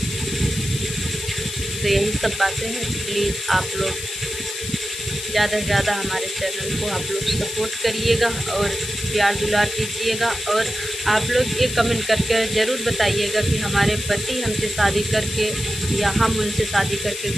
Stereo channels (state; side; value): noise; left; hiss, 7 dB below the sound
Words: तो यही सब बातें हैं। प्लीज़ आप लोग ज़्यादा से ज़्यादा हमारे चैनल को आप लोग सपोर्ट करिएगा और प्यार दुलार कीजिएगा। और आप लोग ये कमेंट करके ज़रूर बताइएगा कि हमारे पति हमसे शादी करके या हम उनसे शादी करके